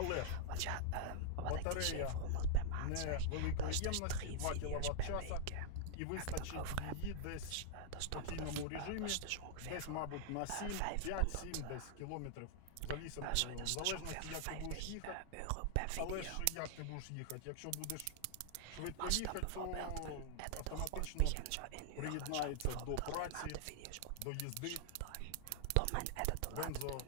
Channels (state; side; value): different; both; correlation 0.00